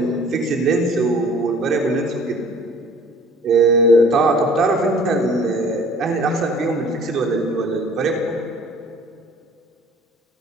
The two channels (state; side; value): normal; both; correlation 0.51